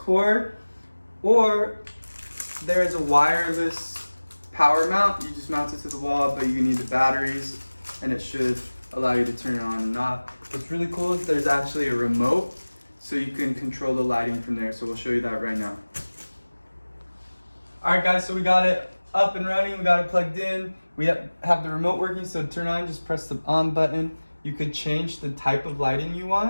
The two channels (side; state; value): both; inverted; correlation -1.00